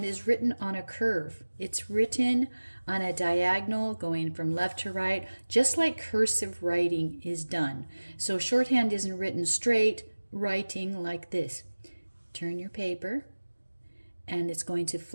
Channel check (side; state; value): both; inverted; correlation -1.00